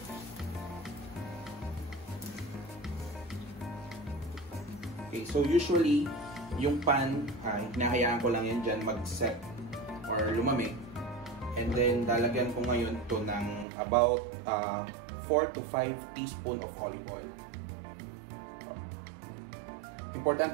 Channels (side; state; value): left; drops out; at 13.7 s